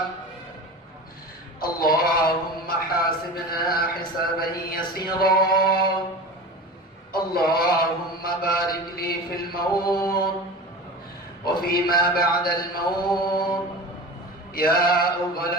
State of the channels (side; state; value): both; normal; correlation 0.33